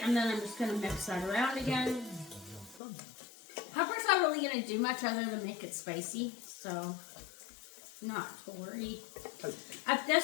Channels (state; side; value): drops out; right; at 2.8 s